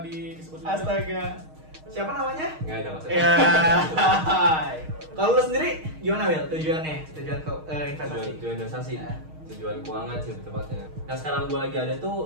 disebut juga. Astaga. Siapa namanya? Nggak ada maksudnya. Ya. Kalau lu sendiri gimana Wil? Tujuannya? Tujuan ke investasi? Tujuan investasi. Ya. Tujuan keuangan sih tepatnya. Nah sekarang gue lagi ada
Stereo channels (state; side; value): late; left; 6.4 ms